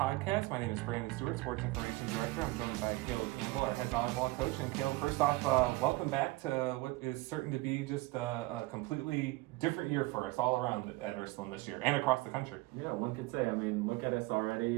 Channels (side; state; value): left; quieter; 20.8 dB